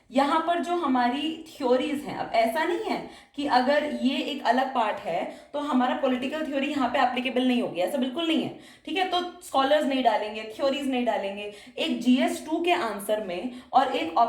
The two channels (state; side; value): identical; both; correlation 1.00